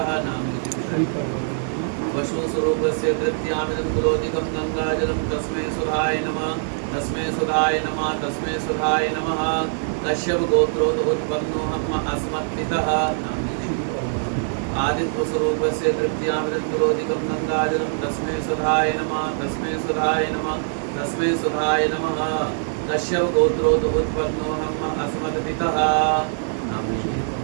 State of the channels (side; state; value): left; silent; digital silence